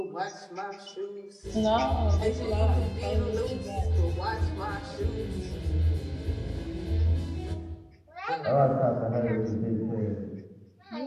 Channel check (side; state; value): both; identical; correlation 1.00